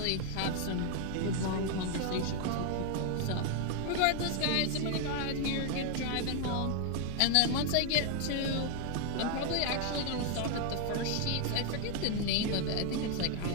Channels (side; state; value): both; different; correlation 0.00